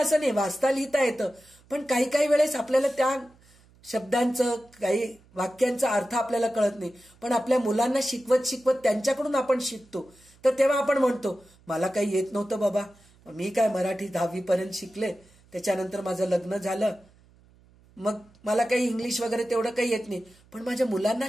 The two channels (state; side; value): noise; right; hum, 29 dB below the sound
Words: नाही, वाचता लिहिता येतं, पण काही काही वेळेस आपल्याला त्या शब्दांचं, काही वाक्यांचा अर्थ आपल्याला कळत नाही. पण आपल्या मुलांना शिकवत त्यांच्याकडून आपण शिकतो. तर तेव्हा आपण म्हणतो, मला काही येत नव्हतं बाबा, मी काय मराठी 10वी पर्यंत शिकले, त्याच्यानंतर माझं लग्न झालं, मग मला काही इंग्लिश वगैरे तेवढं काही येत नाही, पण माझ्या मुलांना